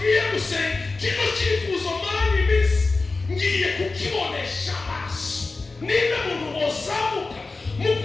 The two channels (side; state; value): right; quieter; 3.7 dB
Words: gusenga, kino cyifuzo maranye iminsi ngiye kukibonesha amaso. Niba muntu ozamuka mu